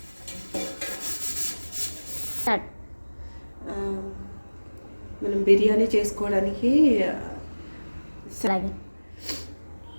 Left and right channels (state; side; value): inverted; both; correlation -1.00